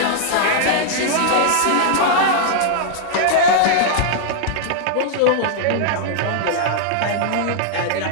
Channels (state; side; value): different; both; correlation -0.01